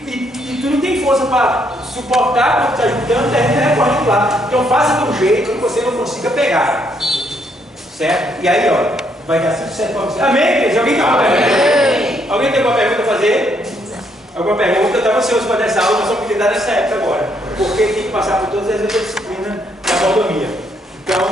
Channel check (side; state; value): both; normal; correlation 0.72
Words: tu não tem força para suportar quando tu está juntando, termina recorrendo lá. Então faça de um jeito que você não consiga pegar. Certo? E aí, ó, vai dar 5% para você. Amém, igreja? Alguém tem uma pergunta? Alguém tem alguma pergunta a fazer? Alguma pergunta? Eu estava ansioso para essa aula, mas só podia dar nessa época agora. Porque tem que passar por todas as outras disciplinas da mordomia.